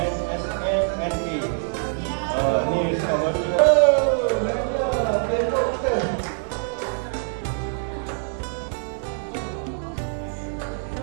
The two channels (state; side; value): silent; left; 62 dB below the other